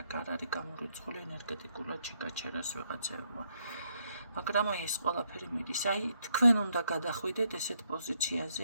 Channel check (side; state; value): both; inverted; correlation -0.75